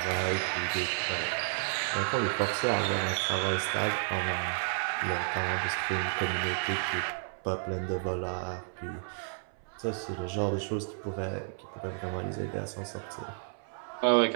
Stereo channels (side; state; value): left; silent; 57 dB below the other